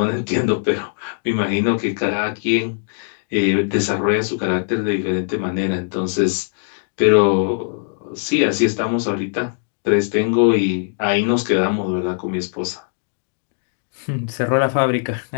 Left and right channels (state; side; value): silent; right; digital silence